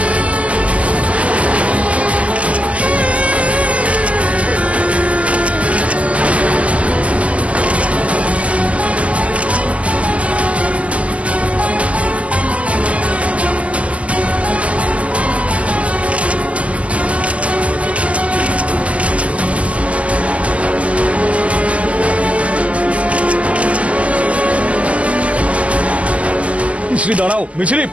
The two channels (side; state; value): left; late; 0.065 ms